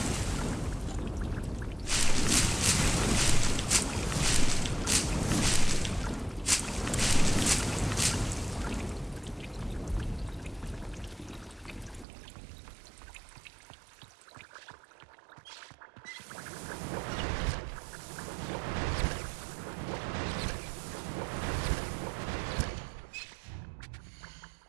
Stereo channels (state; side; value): drops out; left; at 12.1 s